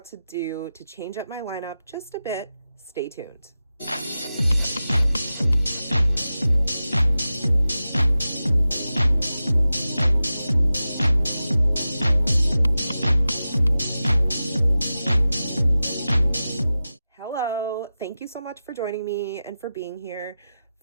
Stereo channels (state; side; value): inverted; both; correlation -0.93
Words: to do to change up my lineup just a bit, stay tuned. Hello, thank you so much for joining me and for being here